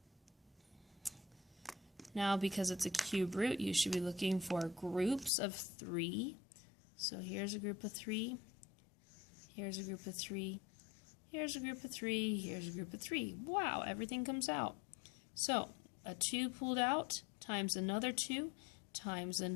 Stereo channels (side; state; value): right; drops out; at 5.3 s